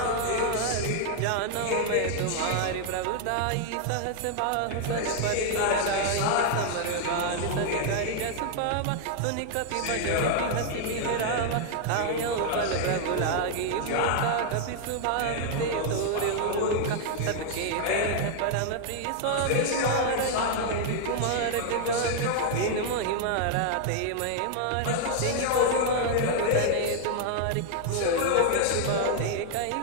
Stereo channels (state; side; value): different; both; correlation 0.00